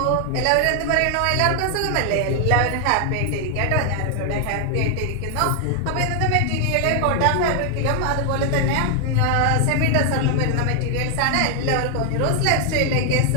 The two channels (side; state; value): both; different; correlation 0.00